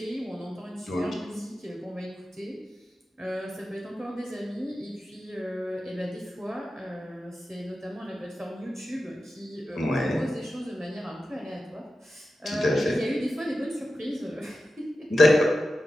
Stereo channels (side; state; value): both; normal; correlation 0.92